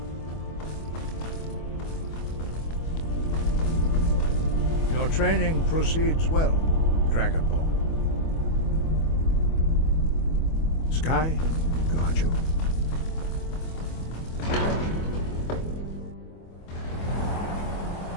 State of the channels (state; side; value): late; right; 25 ms